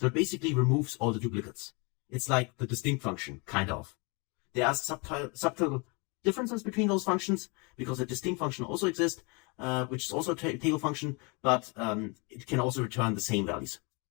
it basically removes all the duplicates. It's like the distinct function, kind of. There are subtle differences between those functions because the distinct function also exists, which is also a table function, but it can also return the same values.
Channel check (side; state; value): right; quieter; 30.9 dB